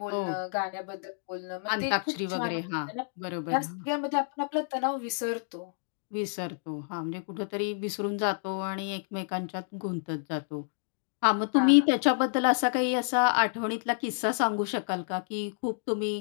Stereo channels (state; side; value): silent; right; digital silence